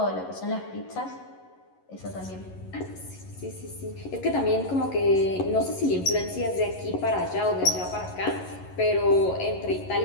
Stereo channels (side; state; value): right; late; 11 ms